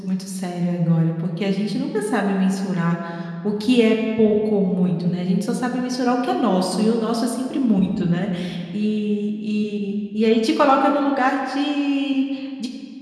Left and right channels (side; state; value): both; identical; correlation 1.00